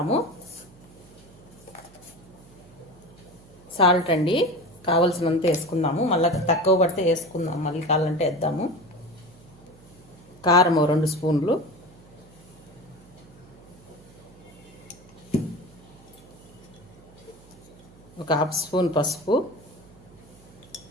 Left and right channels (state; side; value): noise; right; hum, 24 dB below the sound